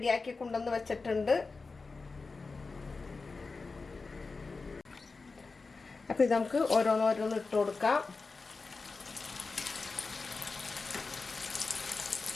കൊണ്ടുവന്ന് വെച്ചിട്ടുണ്ട്. അപ്പോൾ ഇത് നമുക്ക് ഓരോന്ന് ഇട്ട് കൊടുക്കാം.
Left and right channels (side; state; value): right; quieter; 4.1 dB